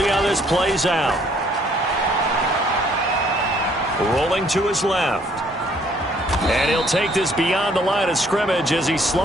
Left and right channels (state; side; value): normal; both; correlation 0.63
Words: how this plays out. Rolling to his left. And he'll take this beyond the line of scrimmage as he